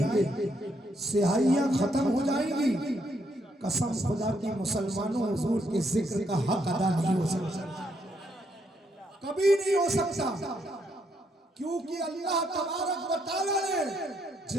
گے, سیاہیاں ختم ہو جائیں گی. قسم خدا کی مسلمانوں حضور کے ذکر کا حق ادا نہیں ہو سکتا, کبھی نہیں ہو سکتا. کیونکہ اللہ تبارک و تعالیٰ نے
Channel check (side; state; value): both; normal; correlation 0.75